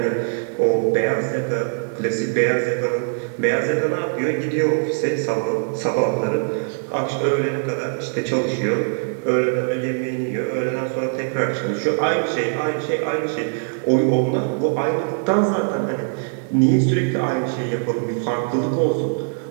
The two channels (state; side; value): silent; left; digital silence